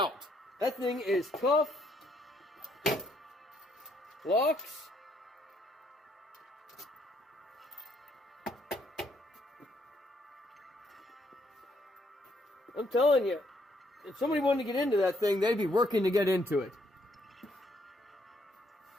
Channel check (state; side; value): normal; both; correlation 0.71